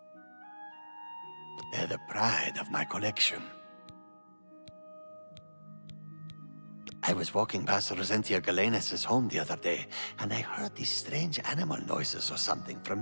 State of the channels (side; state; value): both; inverted; correlation -1.00